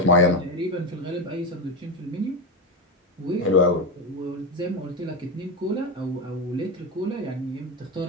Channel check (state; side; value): normal; both; correlation 0.13